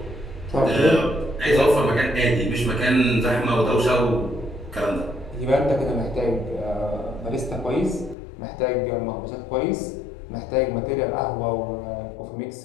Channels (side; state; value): right; drops out; at 8.2 s